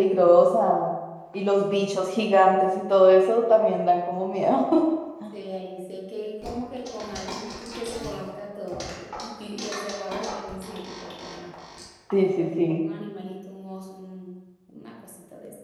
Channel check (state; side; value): identical; both; correlation 1.00